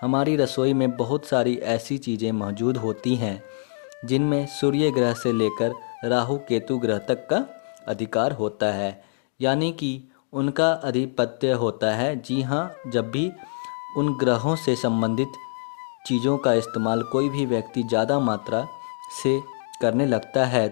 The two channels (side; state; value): right; silent; digital silence